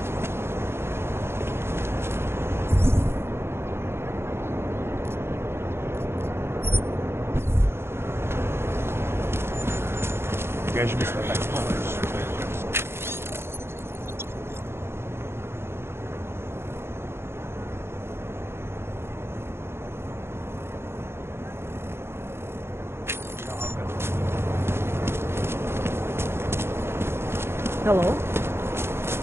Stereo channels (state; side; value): late; left; 0.12 ms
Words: Kež bychom tak mohli. Hello?